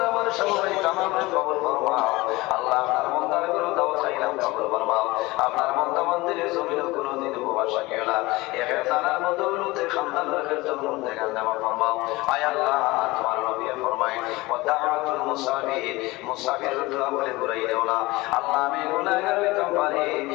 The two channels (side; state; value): right; quieter; 21.1 dB